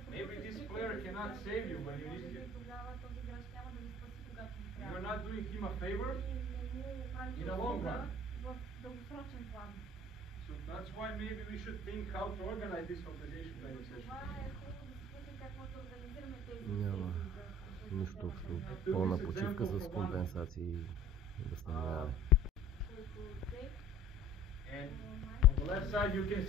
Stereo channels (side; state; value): both; normal; correlation 0.47